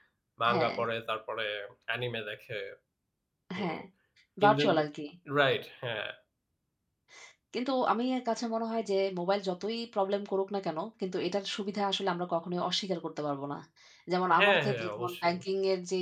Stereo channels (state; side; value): identical; both; correlation 1.00